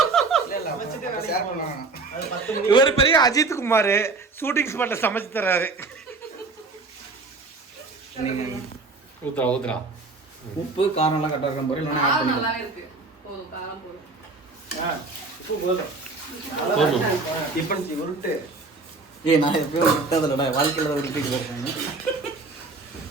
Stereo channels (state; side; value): quieter; left; 3.8 dB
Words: ஷேர் பண்ணுவாங்க. இவர் பெரிய அஜித் குமார் ஷூட்டிங் ஸ்பாட்ல சமைச்சு தர்றாரு. ஊத்துறா ஊத்துறா. உப்பு காரம் எல்லாம் கரெக்டாக இருக்கும். இல்லைன்னா ஆட் காரம் பண்ணிக்கலாம். நல்லாவே இருக்கு. போதும், காரம் போதும். உப்பு போதும். டிஃபன் உருட்டு. நான் எப்பயும் விட்டதில்லடா, வாழ்க்கையில் தான் உருட்டிட்டு இருக்காங்க.